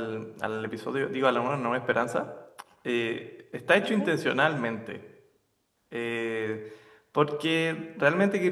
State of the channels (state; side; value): identical; both; correlation 1.00